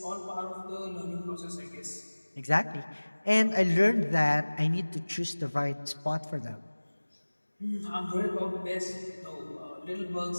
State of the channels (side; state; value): both; inverted; correlation -1.00